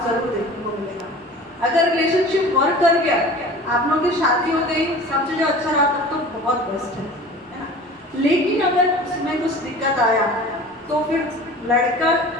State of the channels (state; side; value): normal; both; correlation 0.40